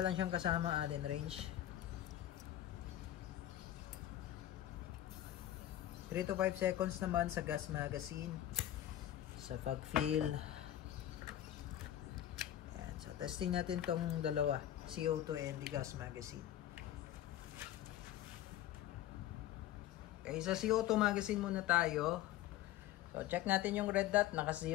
lang siyang kasama Allen wrench. 3 to 5 seconds naman sa gas magazine. Sa pag-fill. Yan. So testing natin tong dalawa. CO2 and the gas magazine. Okay, sa CO2 magazine muna tayo. So, check natin yung red dot.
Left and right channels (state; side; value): quieter; right; 12.8 dB